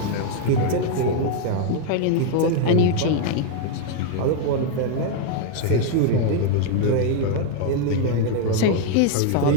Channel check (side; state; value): both; different; correlation 0.00